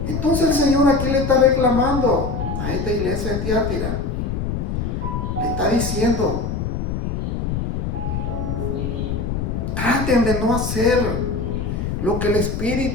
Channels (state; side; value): noise; left; rumble, 2 dB below the sound